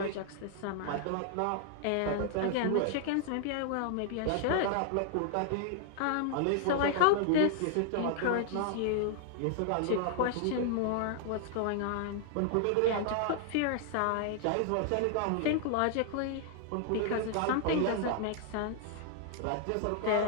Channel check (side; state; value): both; different; correlation -0.01